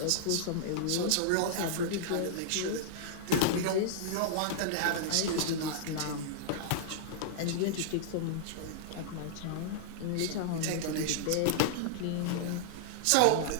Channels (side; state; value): both; different; correlation -0.01